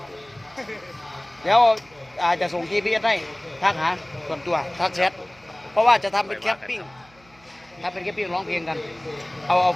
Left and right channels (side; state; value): right; noise; hum, 29 dB below the sound